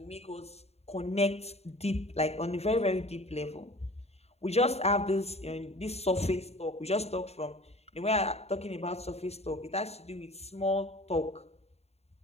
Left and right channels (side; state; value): right; late; 0.30 ms